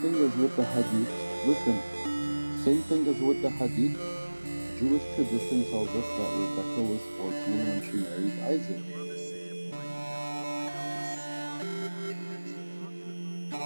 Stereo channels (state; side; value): inverted; both; correlation -1.00